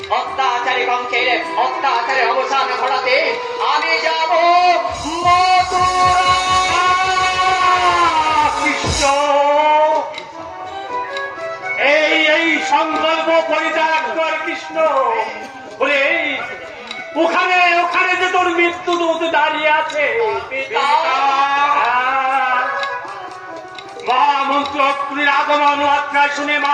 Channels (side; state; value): both; identical; correlation 1.00